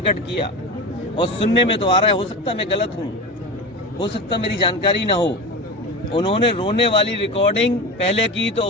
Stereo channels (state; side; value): normal; both; correlation 0.26